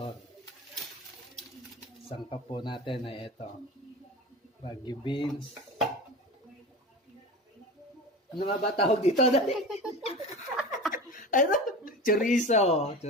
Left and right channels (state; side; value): normal; both; correlation 0.30